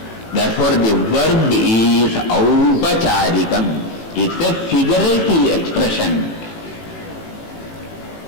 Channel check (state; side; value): late; right; 18 ms